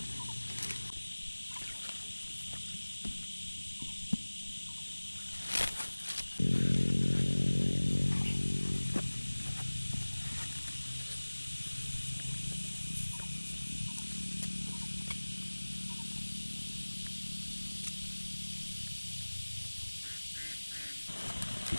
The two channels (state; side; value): inverted; both; correlation -1.00